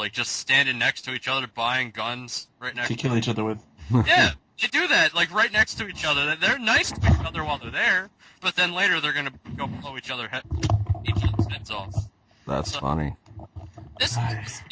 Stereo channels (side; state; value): both; identical; correlation 1.00